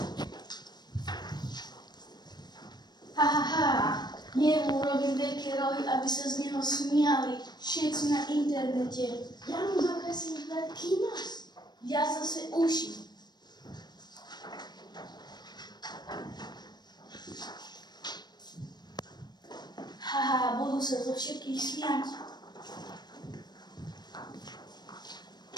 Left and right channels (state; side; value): late; right; 0.20 ms